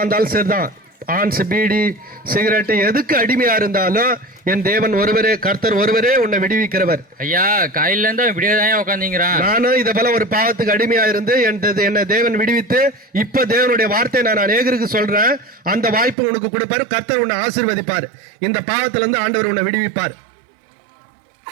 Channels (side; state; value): left; drops out; at 16.2 s